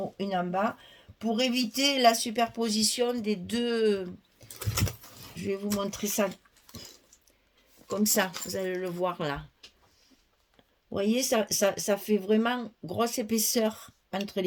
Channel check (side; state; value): both; identical; correlation 1.00